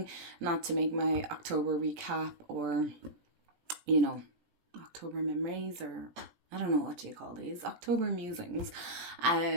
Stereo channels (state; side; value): late; left; 17 ms